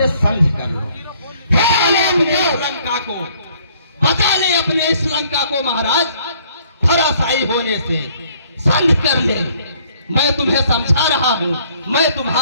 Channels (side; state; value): both; inverted; correlation -0.62